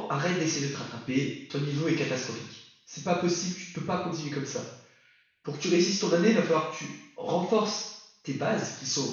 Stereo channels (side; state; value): both; identical; correlation 1.00